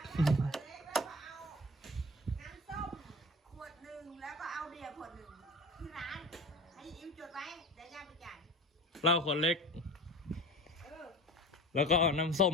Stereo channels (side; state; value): both; normal; correlation 0.35